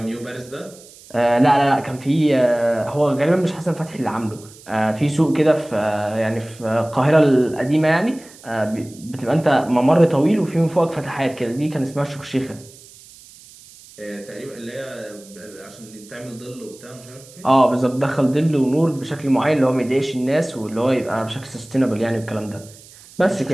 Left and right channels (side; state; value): right; noise; hiss, 22 dB below the sound